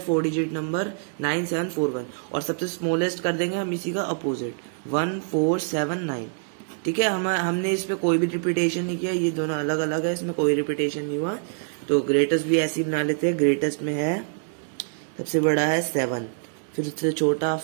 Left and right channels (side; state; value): left; silent; digital silence